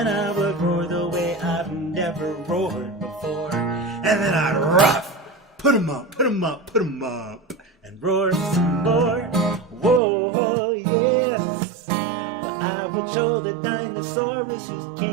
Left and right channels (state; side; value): drops out; left; at 10.0 s